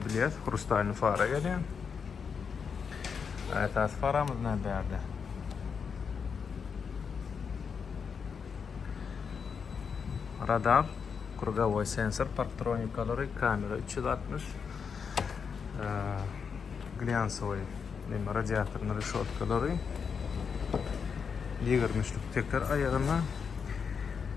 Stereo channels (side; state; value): right; quieter; 6.2 dB